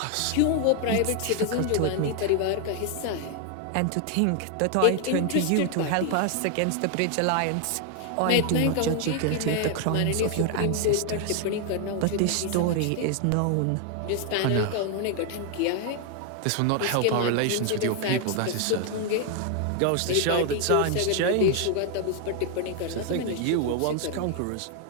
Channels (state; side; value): different; both; correlation 0.00